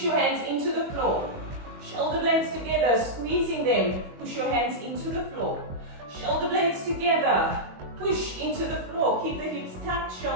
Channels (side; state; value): left; late; 21 ms